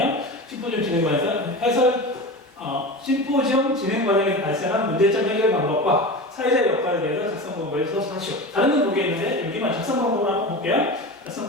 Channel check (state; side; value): normal; both; correlation 0.28